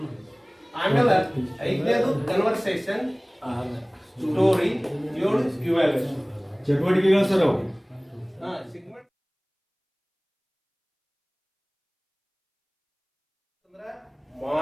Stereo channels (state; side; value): identical; both; correlation 1.00